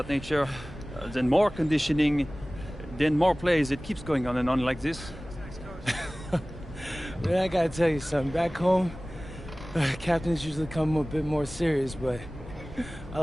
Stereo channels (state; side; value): normal; both; correlation 0.98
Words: nature. Then more conditioning. Then more plays. It keeps going on and on like this. Man, I gotta tell you something. Back home, captains usually come a bit more serious, but I